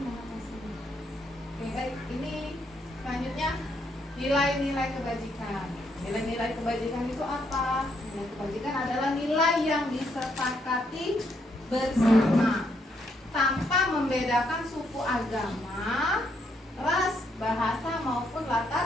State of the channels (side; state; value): both; normal; correlation 0.75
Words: mengatasinya. Oke, baik. Ini selanjutnya nilai-nilai kebajikan. Nilai-nilai kebajikan itu apa? Nilai kebajikan adalah nilai yang disepakati bersama tanpa membedakan suku, agama, ras, bahasa maupun